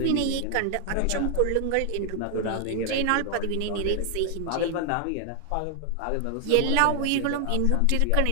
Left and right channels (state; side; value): different; both; correlation 0.00